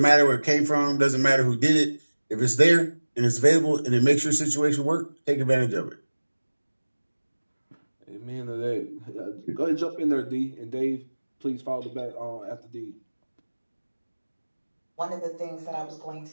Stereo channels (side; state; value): both; inverted; correlation -1.00